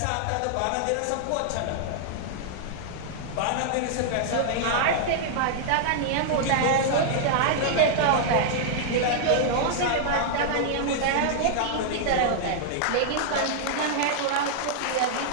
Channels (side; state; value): both; different; correlation -0.01